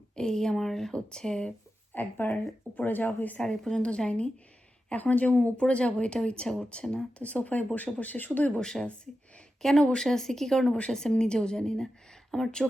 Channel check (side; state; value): both; normal; correlation 0.91